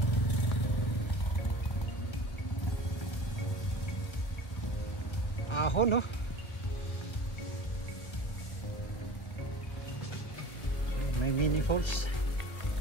Ahon, no. May mini falls.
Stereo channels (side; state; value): right; late; 1.2 ms